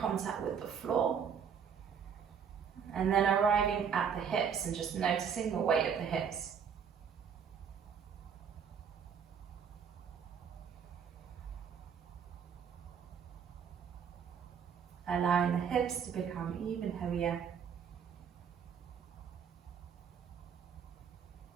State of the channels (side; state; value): left; quieter; 7.2 dB